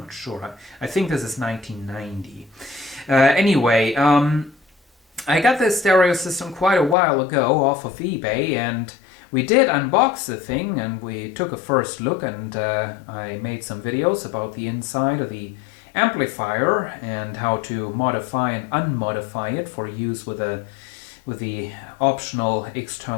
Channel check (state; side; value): drops out; right; at 7.0 s